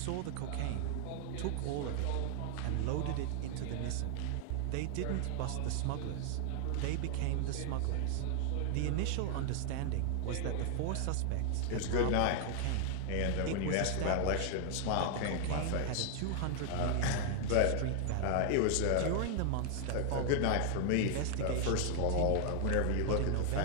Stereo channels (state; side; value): different; both; correlation 0.00